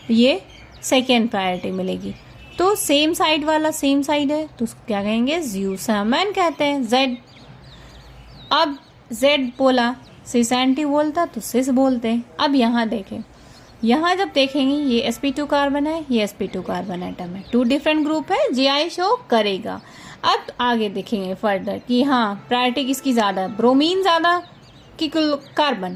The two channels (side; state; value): both; identical; correlation 1.00